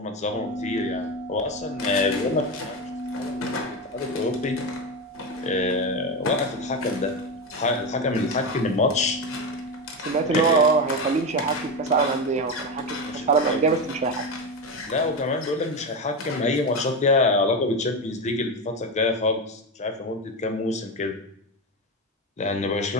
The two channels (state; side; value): normal; both; correlation 0.16